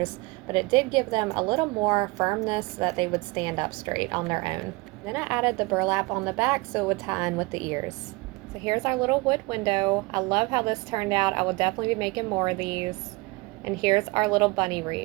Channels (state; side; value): quieter; left; 24.5 dB